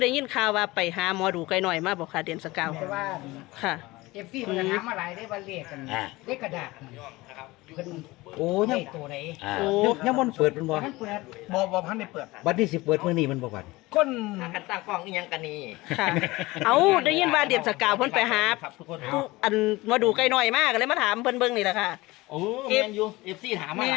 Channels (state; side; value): quieter; right; 20.6 dB